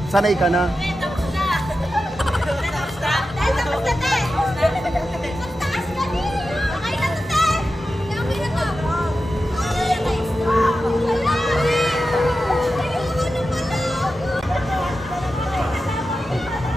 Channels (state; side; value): normal; both; correlation 0.92